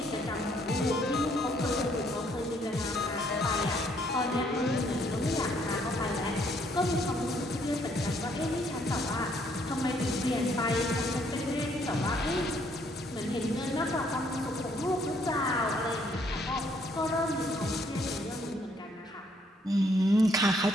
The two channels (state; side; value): normal; both; correlation 0.68